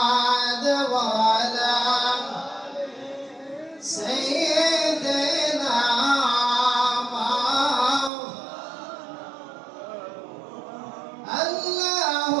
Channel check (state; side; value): drops out; left; at 8.1 s